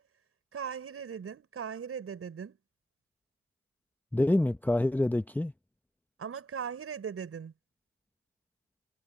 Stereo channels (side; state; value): both; normal; correlation 0.84